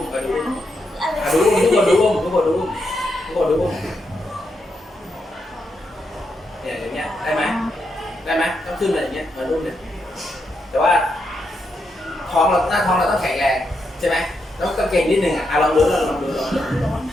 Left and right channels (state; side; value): normal; both; correlation 0.82